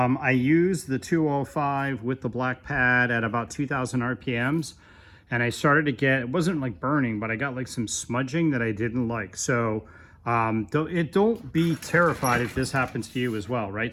used the 205 with the black pad at about 2,000 RPMs, and I started to get, it wasn't like burning, but I got like some smudging that I didn't like. So don't be terrified if this happens to you as well,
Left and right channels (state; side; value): identical; both; correlation 1.00